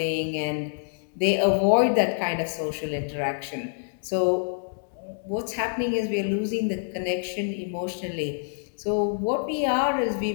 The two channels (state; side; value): silent; right; digital silence